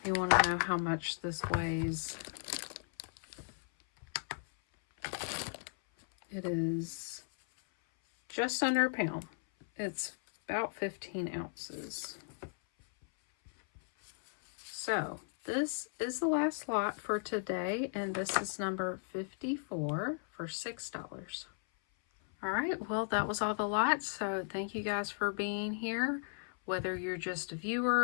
you want to know how much this weighs, it is just under a pound. It's about 15 ounces. So this is the last lot for today, and this is number 54 for $6. All right, well, that was all the lots, so thank you guys for being here. Whether you're just a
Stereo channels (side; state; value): right; silent; 54 dB below the other